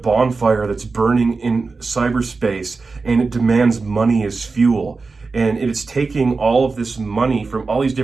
that's burning in cyberspace, and it demands money as fuel. And it is taking all of this money from all these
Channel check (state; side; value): quieter; left; 4.2 dB